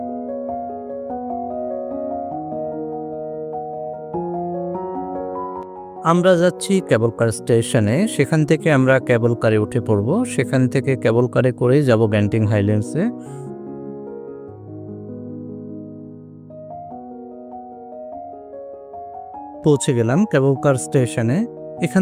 আমরা যাচ্ছি কেবল কার স্টেশনে। সেখান থেকে আমরা কেবল কারে উঠে পড়ব। সেখান থেকে কেবল কারে করেই যাব গ্যান্টিং হাইল্যান্ডসে। পৌঁছে গেলাম কেবল কার স্টেশনে।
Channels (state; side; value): identical; both; correlation 1.00